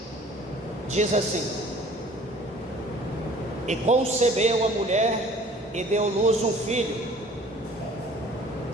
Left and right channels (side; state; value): both; normal; correlation 0.51